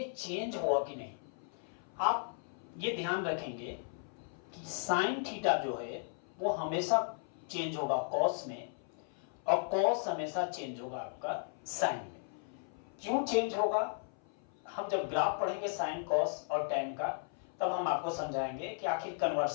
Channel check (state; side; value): silent; right; 54 dB below the other